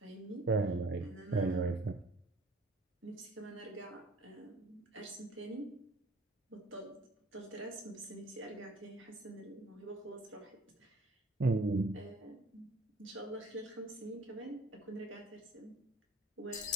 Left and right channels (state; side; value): normal; both; correlation 0.52